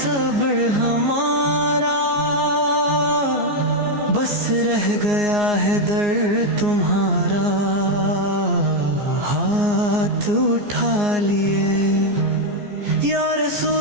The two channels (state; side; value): late; left; 14 ms